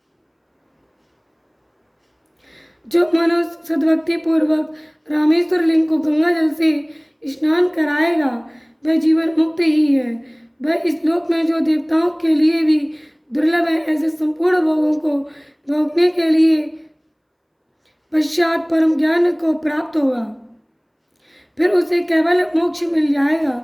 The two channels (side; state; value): both; identical; correlation 1.00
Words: जो मनो सद्भक्ति पूर्वक रामेश्वर लिंग को गंगा जल से स्नान कराएगा वह जीवन मुक्त ही है। वह इस लोक में जो देवताओं के लिए भी दुर्लभ है, ऐसे संपूर्ण भोगों को भोगने के लिए पश्चात परम ज्ञान को प्राप्त होगा। फिर उसे केवल मोक्ष मिल